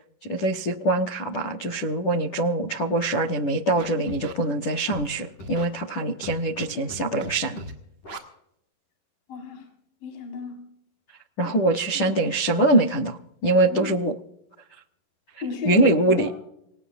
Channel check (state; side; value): late; right; 10 ms